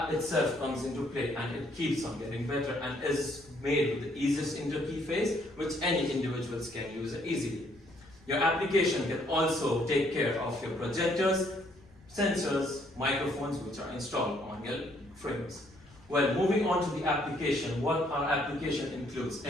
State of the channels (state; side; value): noise; left; rumble, 26 dB below the sound